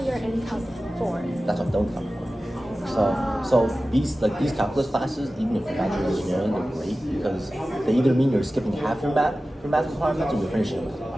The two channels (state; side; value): normal; both; correlation 0.95